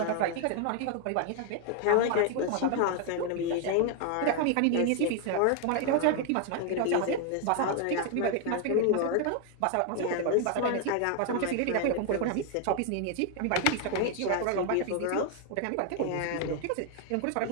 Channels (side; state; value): both; different; correlation 0.00